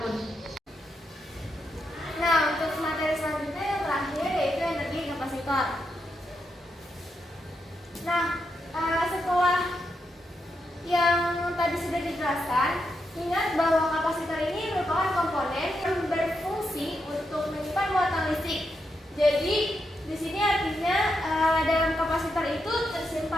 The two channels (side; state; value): both; normal; correlation 0.83